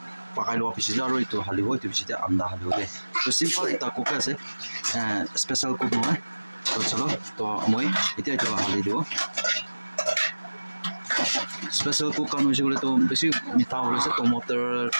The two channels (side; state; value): both; inverted; correlation -1.00